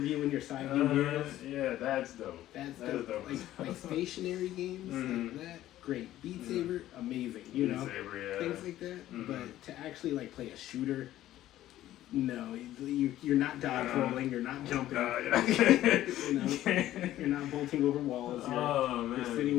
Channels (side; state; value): right; quieter; 13.8 dB